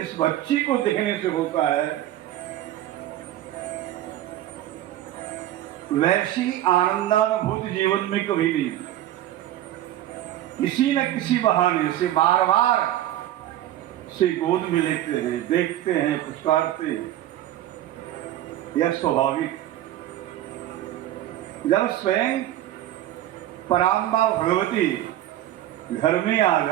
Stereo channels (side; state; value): left; quieter; 13.3 dB